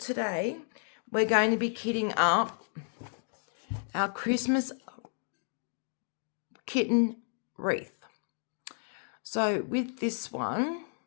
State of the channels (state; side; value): silent; right; digital silence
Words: we're going to be kitting up our Christmas kitten wreath. So with this one,